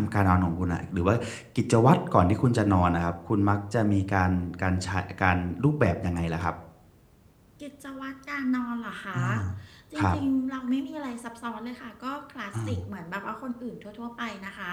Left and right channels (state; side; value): identical; both; correlation 1.00